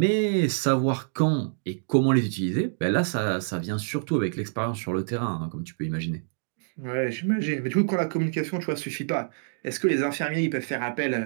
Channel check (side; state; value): left; silent; digital silence